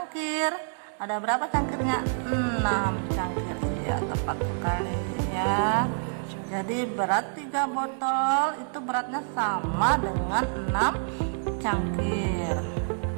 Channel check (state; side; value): silent; left; digital silence